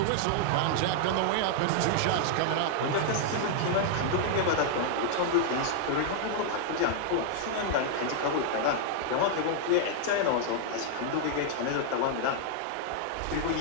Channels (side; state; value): both; different; correlation 0.00